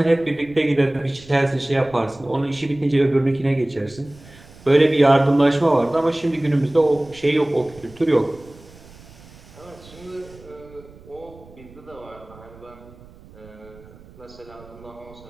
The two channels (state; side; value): noise; right; rumble, 22 dB below the sound